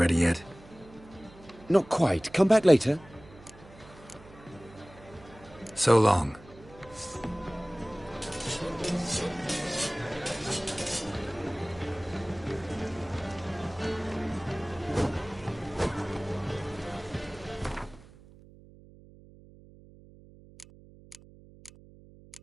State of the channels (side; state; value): right; noise; hum, 22 dB below the sound